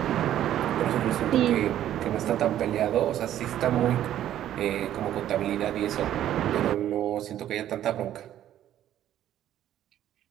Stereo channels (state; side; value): quieter; left; 11.8 dB